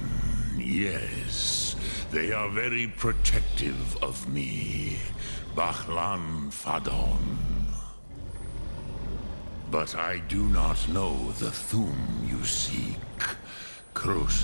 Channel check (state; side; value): inverted; both; correlation -1.00